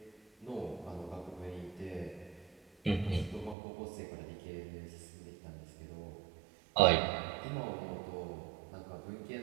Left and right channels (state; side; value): drops out; left; at 3.6 s